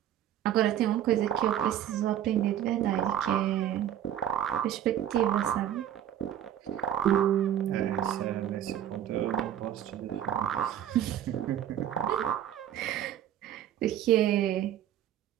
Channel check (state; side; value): quieter; left; 10.7 dB